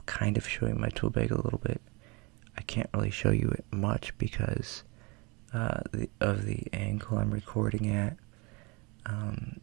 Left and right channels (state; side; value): quieter; left; 28.2 dB